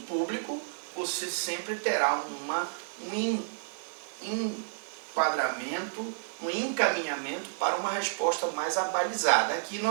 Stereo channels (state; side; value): silent; left; digital silence